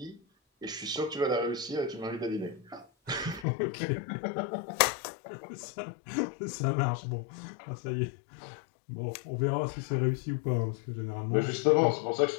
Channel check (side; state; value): right; drops out; at 3.5 s